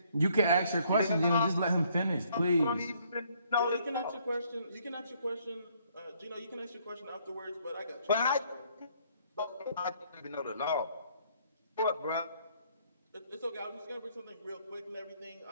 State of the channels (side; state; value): both; inverted; correlation -0.66